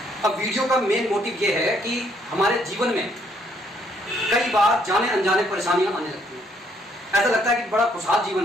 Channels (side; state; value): both; normal; correlation 0.69